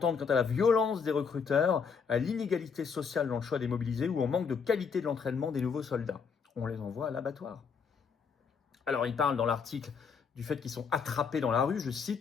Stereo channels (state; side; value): quieter; right; 5.9 dB